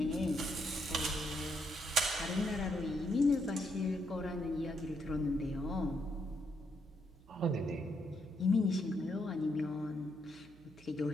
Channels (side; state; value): right; noise; hum, 24 dB below the sound